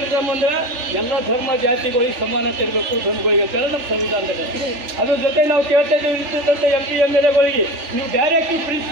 ಅಂದರೆ ಎಲ್ಲ ಧರ್ಮ ಜಾತಿಗಳಿಗೆ ಸಮಾನತೆ ಇರಬೇಕು, ಧರ್ಮಗಳಿಗೆ ಅಂತೇಳಿ ನಮ್ಮ ಸಂವಿಧಾನದಲ್ಲಿ. ಅದ್ರ ಜೊತೆ ನಾವು ಕೇಳ್ತಾ ಇದ್ದೇವೆ ಇರ್ತಕ್ಕಂಥ MP MLAಗಳಿಗೆ ನೀವು ಡೈರೆಕ್ಟಿವ್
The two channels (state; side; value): late; left; 3.4 ms